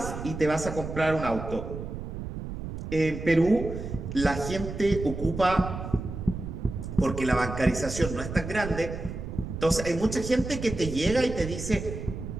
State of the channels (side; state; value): right; noise; rumble, 8 dB below the sound